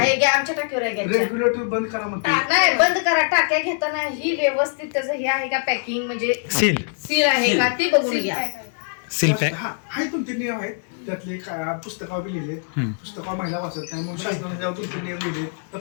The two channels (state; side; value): silent; right; 60 dB below the other